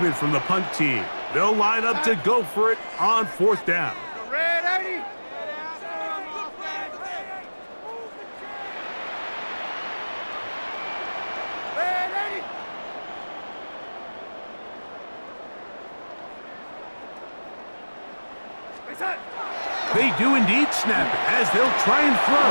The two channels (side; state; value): both; inverted; correlation -1.00